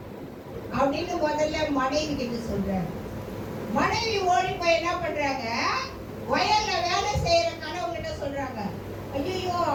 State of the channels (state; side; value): identical; both; correlation 1.00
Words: அப்படின்னு முதல்ல மனைவி கிட்ட சொல்றாரு. மனைவி ஓடி போய் என்ன பண்றாங்க, வயல்ல வேலை செய்யற கணவன் கிட்ட சொல்றாங்க, ஐயோ